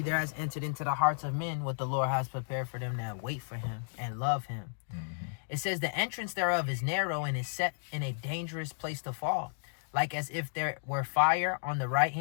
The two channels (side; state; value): right; silent; digital silence